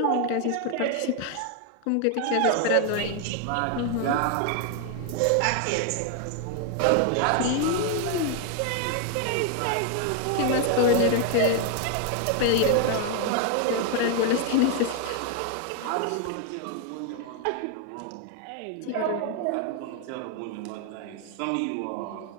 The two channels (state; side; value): different; both; correlation 0.00